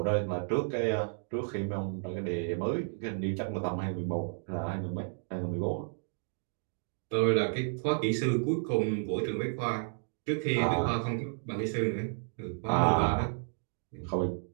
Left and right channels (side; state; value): left; silent; digital silence